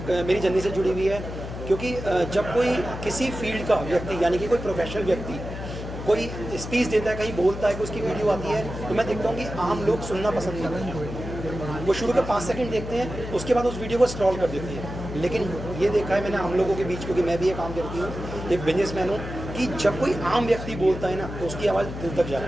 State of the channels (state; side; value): noise; left; hum, 8 dB below the sound